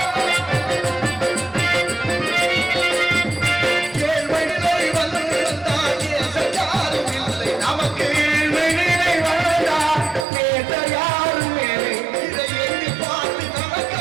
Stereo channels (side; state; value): left; drops out; at 10.2 s